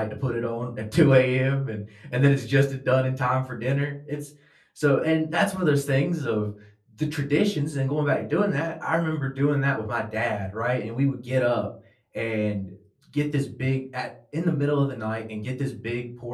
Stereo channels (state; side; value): identical; both; correlation 1.00